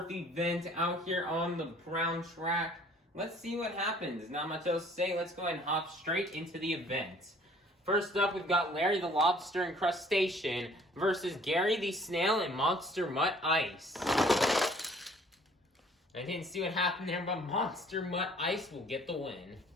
event out here on the brown track. Let's see what happens. Not much else to say, let's go ahead and hop straight into the event. First up, we've got Larry the Lobster and Crustacean versus Gary the Snail and Monster Mutt Ice. I didn't see what happened there, but Monster Mutt Ice will get the win.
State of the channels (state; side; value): normal; both; correlation 0.55